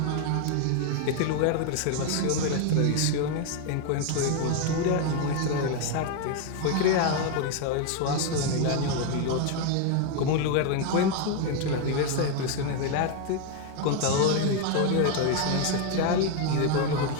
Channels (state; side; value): different; both; correlation 0.01